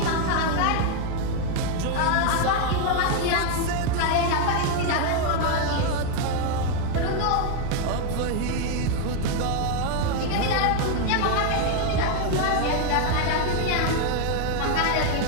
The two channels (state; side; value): different; both; correlation 0.01